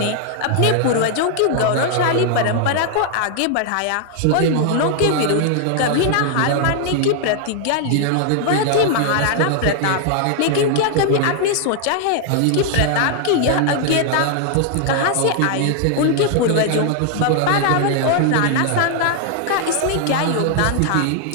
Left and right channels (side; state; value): both; different; correlation 0.00